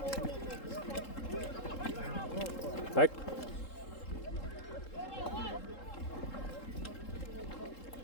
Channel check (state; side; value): late; right; 3.7 ms